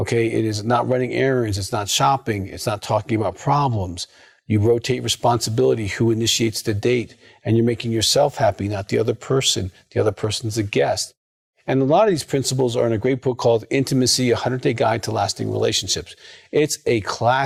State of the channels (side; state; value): both; identical; correlation 1.00